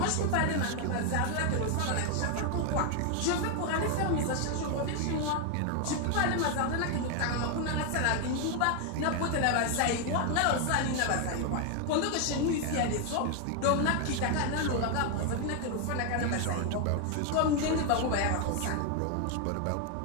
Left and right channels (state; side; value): different; both; correlation 0.01